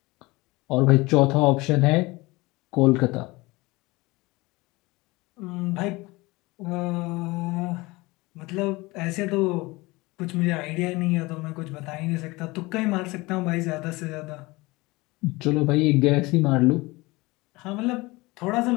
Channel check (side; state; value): right; quieter; 22.5 dB